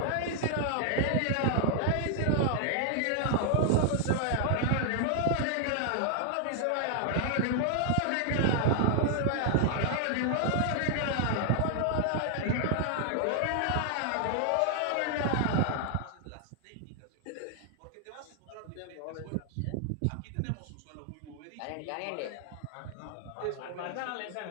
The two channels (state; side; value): different; both; correlation 0.00